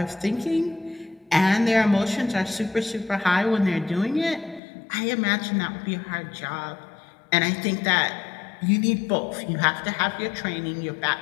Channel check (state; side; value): drops out; right; at 4.6 s